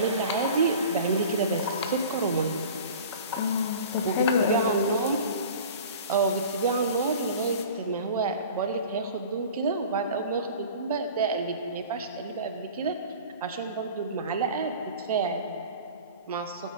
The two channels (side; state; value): both; inverted; correlation -0.40